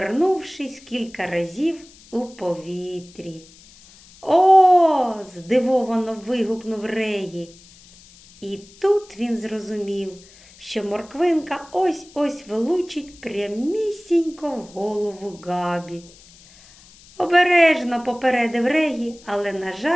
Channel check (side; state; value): left; noise; hiss, 24 dB below the sound